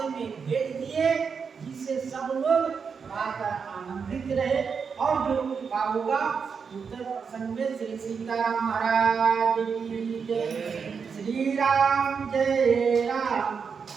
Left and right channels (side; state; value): left; quieter; 6.0 dB